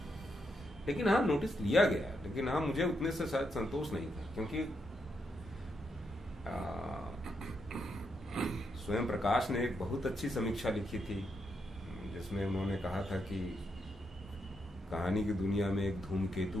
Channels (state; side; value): normal; both; correlation 0.81